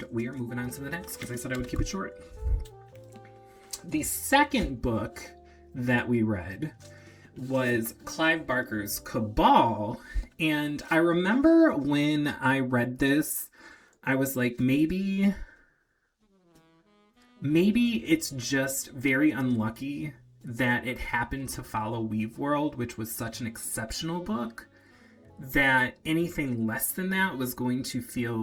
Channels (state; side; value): identical; both; correlation 1.00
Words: we are moving on to the next, because I said I would keep it short. The second book that we read was Clive Barker's Cabal. And I remember when I read this, I was like, maybe it's just very unlucky that it happened to follow Weave World, which was such an exceptional book, that anything less than that was going to feel